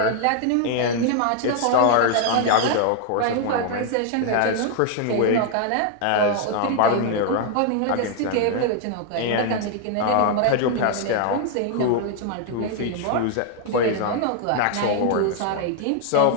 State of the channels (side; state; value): both; different; correlation 0.00